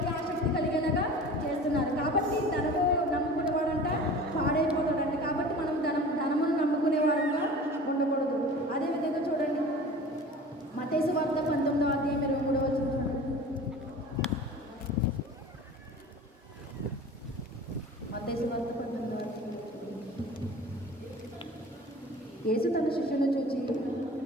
ఆసక్తి కలిగేలాగా చేస్తున్నారు. కాబట్టి ధనము నమ్ముకునేవాడంట పాడైపోతాడంట. కాబట్టి మనం ధనమును నమ్ముకునేవారుగా ఉండకూడదు. అదేవిధంగా చూడండి, మత్తయి సువార్త 19వ అధ్యాయం 23వ వచనం. మత్తయి సువార్త 19వ అధ్యాయం. యేసు తన శిష్యులను చూచి,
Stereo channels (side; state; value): both; normal; correlation 0.40